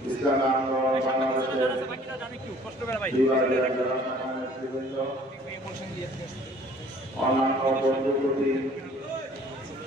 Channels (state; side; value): normal; both; correlation 0.54